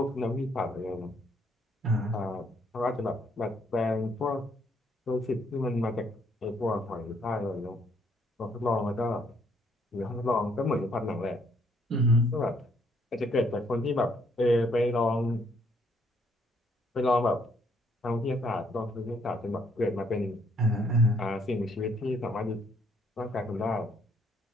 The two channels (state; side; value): normal; both; correlation 0.68